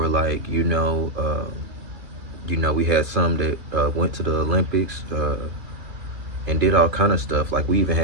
like we had some that went to the Olympics and did all kind of stuff. Like we even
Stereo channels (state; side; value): late; left; 2.6 ms